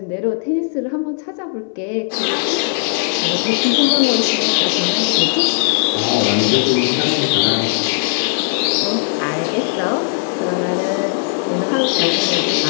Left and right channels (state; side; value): silent; right; 64 dB below the other